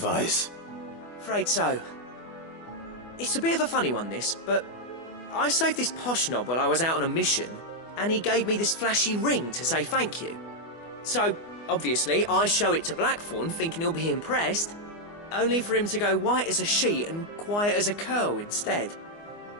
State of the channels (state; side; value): late; right; 24 ms